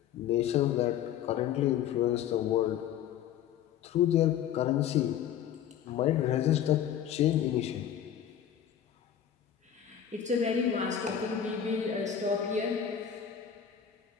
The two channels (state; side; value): quieter; right; 9.6 dB